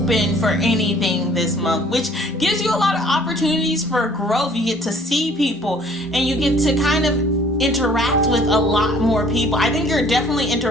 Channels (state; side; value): normal; both; correlation 0.55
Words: for anything this month, which gives you a lot of opportunities for growth. You get to see people, and you get to kind of interact with a lot more people. I think you're definitely